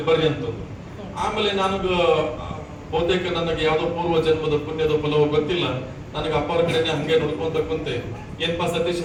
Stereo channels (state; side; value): identical; both; correlation 1.00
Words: ಬರ್ರಿ ಅಂತಂದು. ಆಮೇಲೆ ನನಗ ಬಹುತೇಕ ನನಗೆ ಯಾವ್ದೋ ಪೂರ್ವ ಜನ್ಮದ ಪುಣ್ಯದ ಫಲವೋ ಗೊತ್ತಿಲ್ಲ, ನನಗೆ ಅಪ್ಪ ಅವ್ರ ಕಡೆನೆ ಹಂಗೆ ನೋಡ್ಕೊಂತ ಕುಂತೆ, ಏನ್ಪಾ ಸತೀಶ್